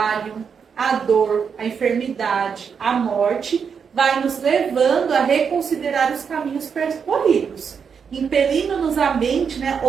a dor, a enfermidade, a morte, vai nos levando a reconsiderar os caminhos percorridos, impelindo-nos a mente, né,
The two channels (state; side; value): quieter; left; 6.5 dB